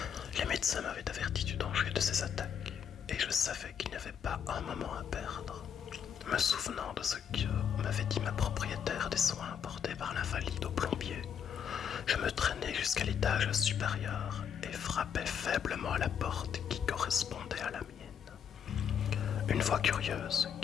Les médecins m'avaient averti du danger de ces attaques, et je savais qu'il n'y avait pas un moment à perdre. Me souvenant de ce que m'avait dit ma propriétaire des soins apportés par l'invalide au plombier, je me traînai jusqu'à l'étage supérieur et frappai faiblement à la porte qui correspondait à la mienne. Une voix curieuse,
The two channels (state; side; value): quieter; right; 8.0 dB